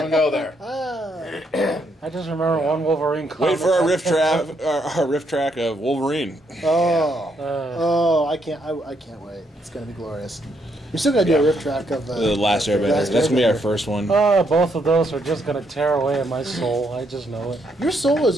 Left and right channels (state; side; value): normal; both; correlation 0.75